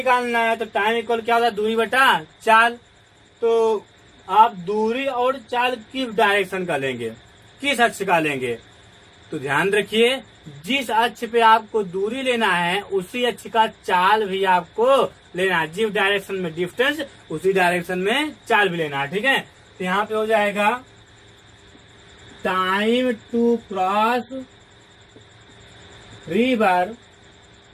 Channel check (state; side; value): identical; both; correlation 1.00